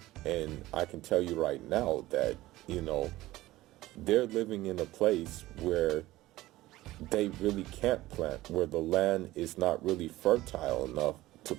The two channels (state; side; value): quieter; left; 17.1 dB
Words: and I can tell you right now that, they're living in a place where they really can't plant, where the land is not really fertile enough to